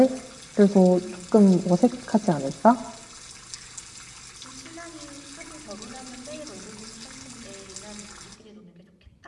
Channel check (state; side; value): identical; both; correlation 1.00